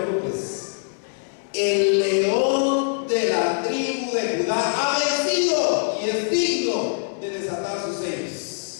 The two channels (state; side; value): silent; right; 63 dB below the other